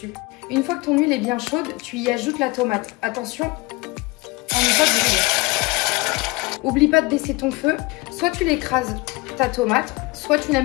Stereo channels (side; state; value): right; quieter; 23.9 dB